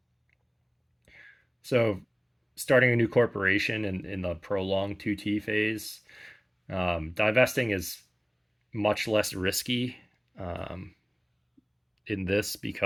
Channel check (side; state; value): both; identical; correlation 1.00